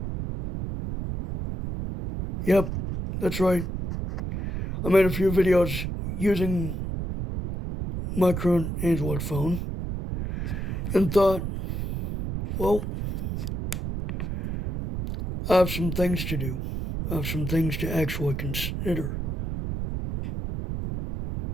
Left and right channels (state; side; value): noise; right; rumble, 4 dB below the sound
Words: Yep, that's right. I made a few videos using my current Android phone and thought, well, I have some things to do. I have some things to actually consider.